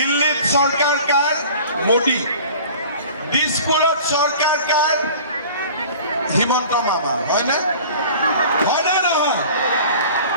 চৰকাৰ কাৰ? মোদী। দিছপুৰত চৰকাৰ কাৰ? হিমন্ত মামা। হয়নে? হয়নে নহয়?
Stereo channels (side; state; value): both; inverted; correlation -0.43